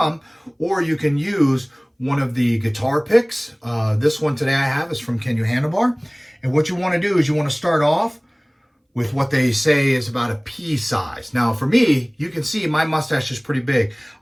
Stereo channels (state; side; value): identical; both; correlation 1.00